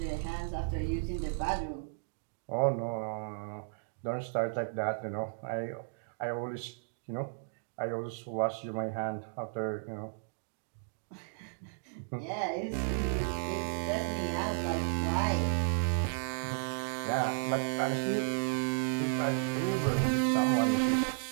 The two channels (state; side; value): silent; left; digital silence